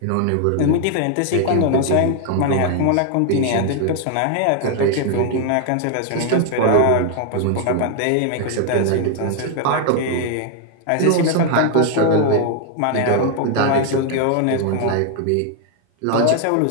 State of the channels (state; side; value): different; both; correlation 0.00